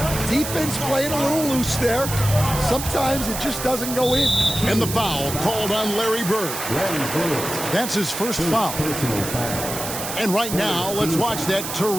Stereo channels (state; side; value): noise; right; hiss, 6 dB below the sound